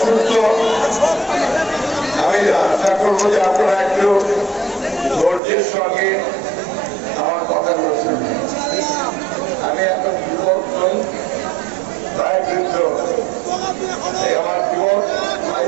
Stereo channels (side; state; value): left; drops out; at 5.4 s